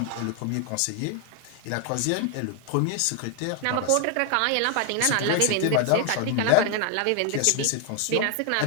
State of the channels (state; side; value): different; both; correlation 0.00